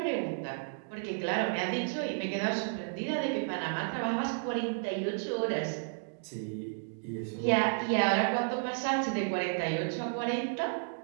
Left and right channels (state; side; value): silent; left; digital silence